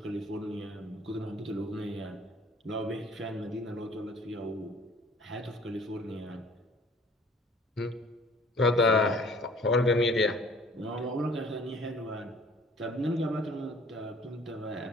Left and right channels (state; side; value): normal; both; correlation 0.53